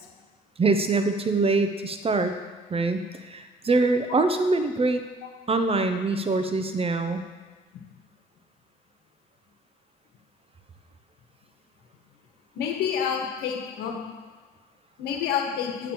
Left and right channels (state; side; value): normal; both; correlation 0.53